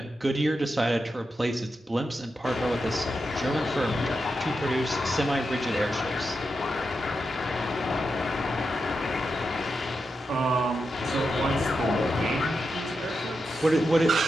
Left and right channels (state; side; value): normal; both; correlation 0.87